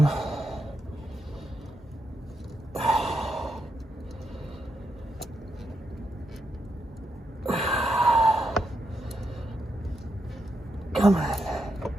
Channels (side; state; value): both; normal; correlation 0.82